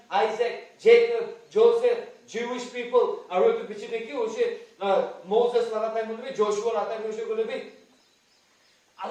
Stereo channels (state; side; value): identical; both; correlation 1.00